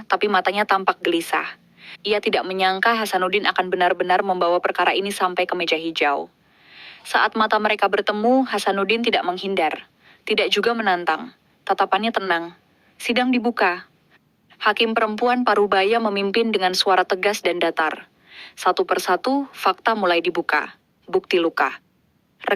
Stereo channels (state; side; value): identical; both; correlation 1.00